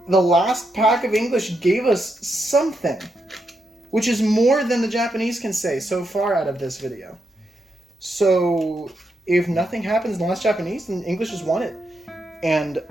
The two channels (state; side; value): normal; both; correlation 0.82